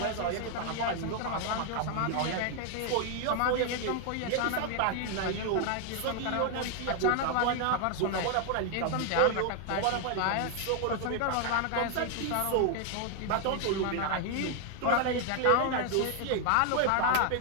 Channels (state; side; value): different; both; correlation 0.00